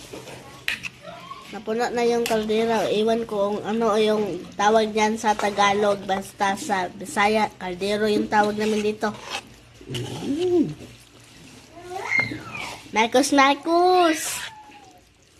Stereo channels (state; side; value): identical; both; correlation 1.00